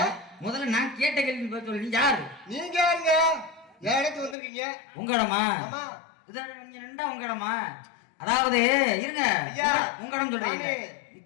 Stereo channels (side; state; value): right; drops out; at 4.4 s